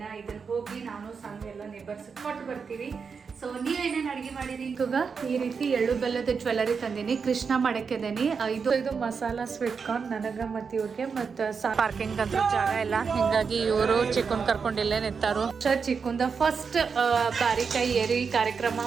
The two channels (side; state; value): left; quieter; 5.7 dB